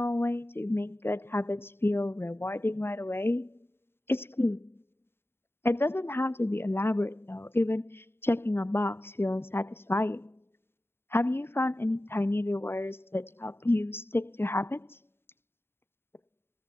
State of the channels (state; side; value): late; right; 0.11 ms